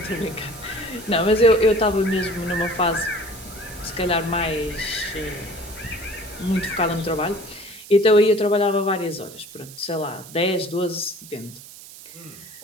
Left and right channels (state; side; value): noise; right; hiss, 17 dB below the sound